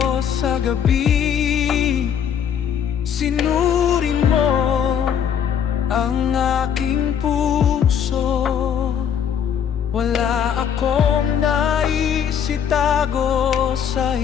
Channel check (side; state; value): right; quieter; 8.3 dB